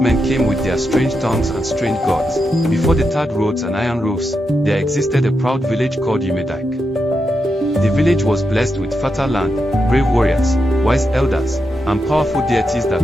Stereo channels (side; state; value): both; normal; correlation 0.85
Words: men came with their strange tongues and strange gods, before the tarred roads and iron roofs, there existed a proud village called Umedike. The village was blessed with fertile land, brave warriors, wise elders, and powerful deities